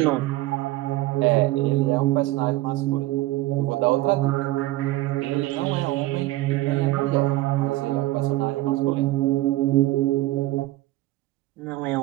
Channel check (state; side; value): quieter; left; 17.3 dB